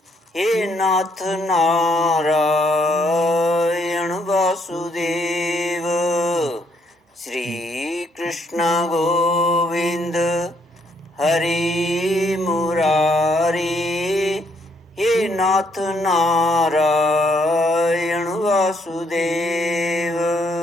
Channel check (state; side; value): normal; both; correlation 0.71